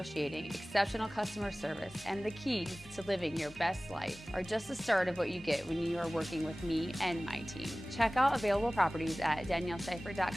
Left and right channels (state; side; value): normal; both; correlation 0.98